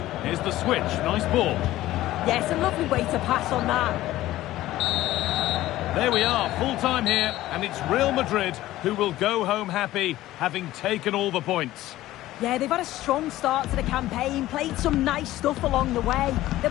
Here's the switch. Nice ball. Yes, a lovely way to pass on that. There we are, full time here, and it's Real Madrid who will go home happy, having taken all the points. Yeah, they've had a strong start to the campaign, played some nice stuff along the way. They'll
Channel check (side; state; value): right; quieter; 15.5 dB